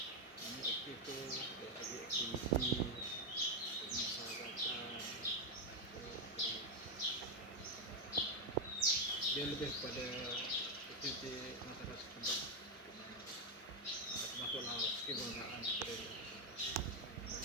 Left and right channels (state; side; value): normal; both; correlation 0.04